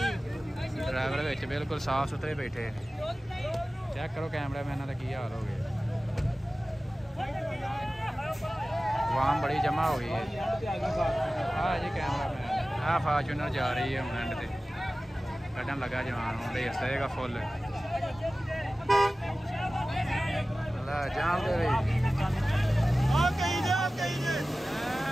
ਡਰਾਈਵਰ ਵਿੱਚ ਬਿਲਕੁਲ ਸਾਫ ਸੁਥਰੇ ਬੈਠੇ ਚੈੱਕ ਕਰੋ ਕੈਮਰਾਮੈਨਾਂ ਦਾ ਕੀ ਹਾਲ ਹੋ ਗਿਆ ਵਾਮ ਬੜੀ ਜਮਾ ਹੋ ਗਈ ਹੈ। ਆਹ ਜੀ ਕੈਮਰਾਮੈਨ ਆਹ ਫਾਰਚੂਨਰ ਜਾ ਰਹੀ ਹੈ ਹੁਣ ਐਂਡ ਤੇ ਕੱਢਣ ਲੱਗਾ ਜਵਾਨ ਹੁਣ ਰੇਸ ਦੇਗਾ ਫੁੱਲ ਲੈ ਜਾਮ ਦੇ ਵੀ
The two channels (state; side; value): normal; both; correlation 0.96